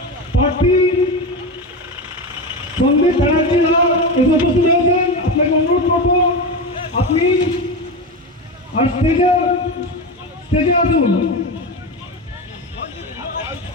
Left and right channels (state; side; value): normal; both; correlation 0.20